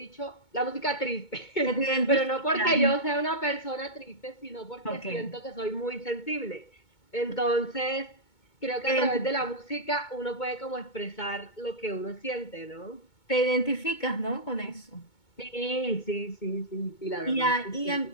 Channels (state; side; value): late; right; 2.2 ms